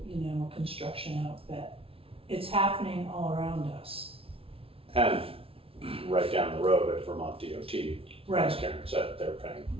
a construction outfit. It's happening all around us. And right down the road at Vermont DOT, Right. as Karen said, they're paying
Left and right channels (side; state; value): left; late; 0.27 ms